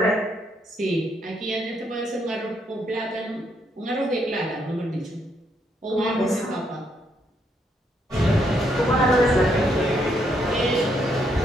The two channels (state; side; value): normal; both; correlation 0.74